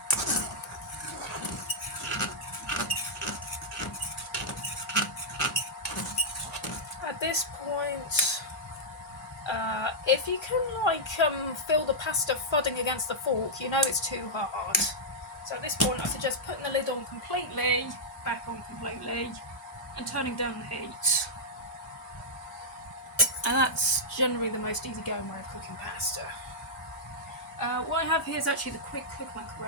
At this point, if you can fill the pasta fudding against the fork, you know it's too hard. So at this point, I suggest putting the lid on completely, back on completely, and turning down the heat. And that's generally the most easygoing way of cooking pasta. What I have here is actually the quick cook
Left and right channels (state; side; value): normal; both; correlation -0.08